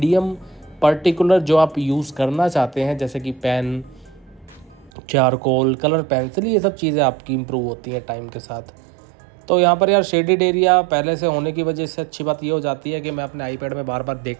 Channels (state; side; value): drops out; left; at 4.9 s